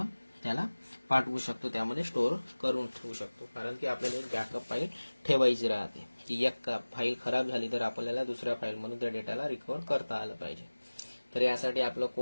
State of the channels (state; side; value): inverted; both; correlation -1.00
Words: त्याला पाठवू शकतो, त्यामध्ये स्टोअर करून ठेवू शकतो. कारण की आपल्याला एक बॅकअप फाईल ठेवायची राहते की एक फाईल खराब झाली तर आपल्याला दुसऱ्या फाईलमधून त्या डेटाला रिकव्हर करता आलं पाहिजे. तर यासाठी आपलं